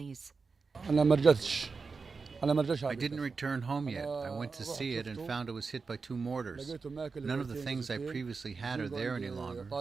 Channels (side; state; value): left; quieter; 4.7 dB